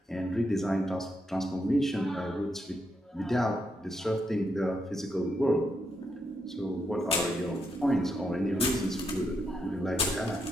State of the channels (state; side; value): normal; both; correlation 0.81